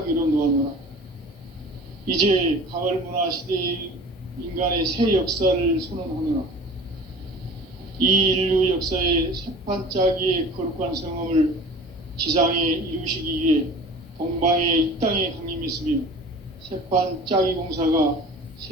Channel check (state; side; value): normal; both; correlation 0.41